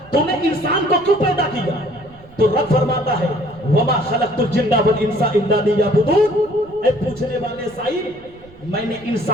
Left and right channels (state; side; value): noise; right; rumble, 24 dB below the sound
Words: تو نے انسان کو کیوں پیدا کیا؟ تو رب فرماتا ہے وما خلقت الجن والانس الا لیعبدون۔ اے پوچھنے والے سائل، میں نے